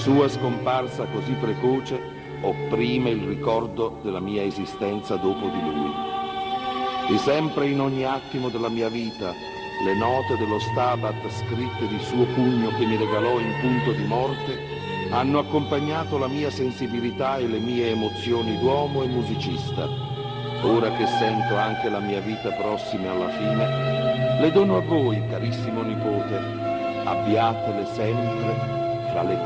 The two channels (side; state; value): both; identical; correlation 1.00